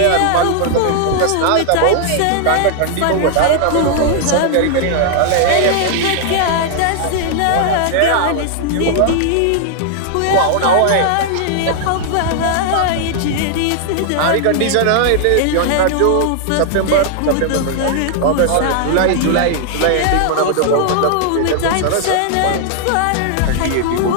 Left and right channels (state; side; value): different; both; correlation 0.00